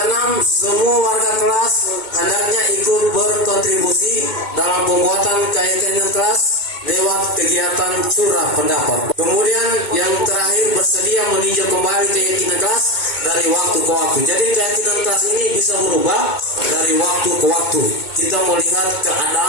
semua warga kelas hendaknya ikut berkontribusi dalam pembuatan keyakinan kelas lewat kegiatan curah pendapat. Kemudian yang terakhir, bersedia meninjau kembali keyakinan kelas dari waktu ke waktu. Jadi keyakinan kelas ini bisa berubah dari waktu ke waktu. Kita melihat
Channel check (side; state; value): right; late; 2.2 ms